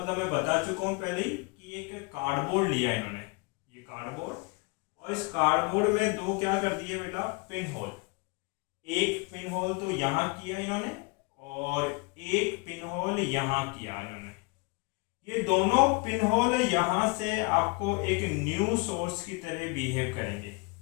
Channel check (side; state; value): right; quieter; 28.6 dB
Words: मैं बता चुका हूँ पहले ही कि एक कार्डबोर्ड लिया इन्होंने, ये कार्डबोर्ड, और इस कार्डबोर्ड में दो क्या कर दिए बेटा, पिन होल। एक पिन होल तो यहाँ किया इन्होंने और एक पिन होल यहाँ किया इन्होंने। ये दोनों पिन होल यहाँ से आपको एक न्यू सोर्स की तरह बिहेव करेंगे।